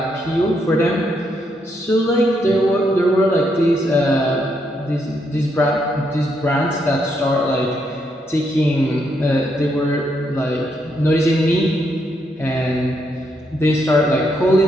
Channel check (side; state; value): both; normal; correlation 0.77